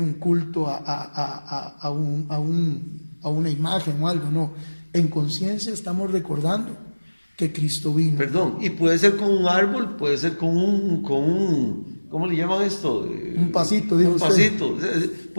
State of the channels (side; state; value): both; inverted; correlation -1.00